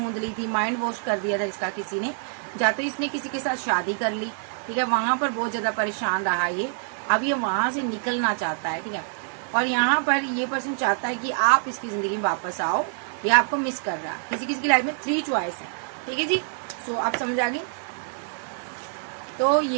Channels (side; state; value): left; silent; 60 dB below the other